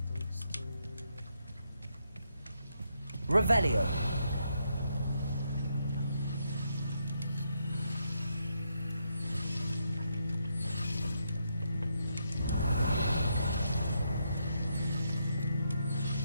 Those two. Revelio!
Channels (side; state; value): both; inverted; correlation -0.79